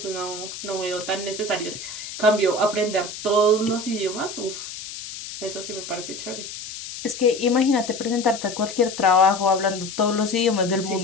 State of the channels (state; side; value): noise; left; hiss, 10 dB below the sound